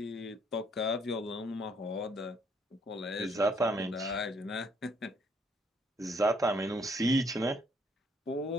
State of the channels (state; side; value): normal; both; correlation 0.67